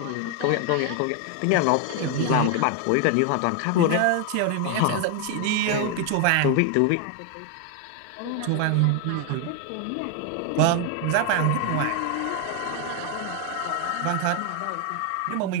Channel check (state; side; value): different; both; correlation 0.01